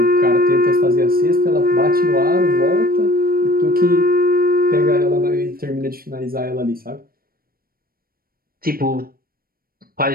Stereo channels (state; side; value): late; left; 0.43 ms